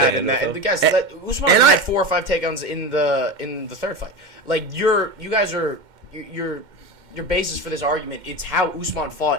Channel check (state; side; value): late; left; 2.1 ms